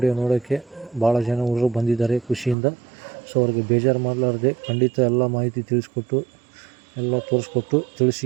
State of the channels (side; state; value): left; drops out; at 2.6 s